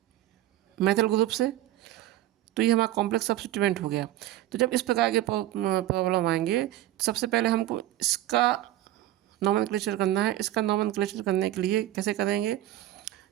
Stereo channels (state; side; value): quieter; left; 14.5 dB